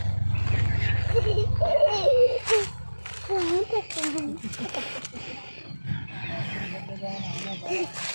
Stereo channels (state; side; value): inverted; both; correlation -1.00